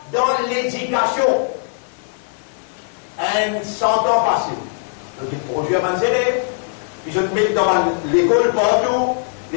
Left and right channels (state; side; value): silent; right; digital silence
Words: dans l'éducation. 100 ans passés. Donc il produit à mes élèves, puis je te mets dans l'école partout,